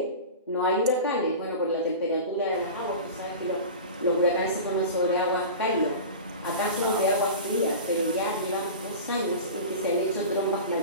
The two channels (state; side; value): inverted; both; correlation -0.32